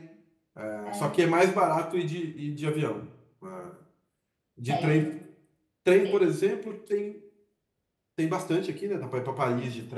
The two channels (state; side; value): identical; both; correlation 1.00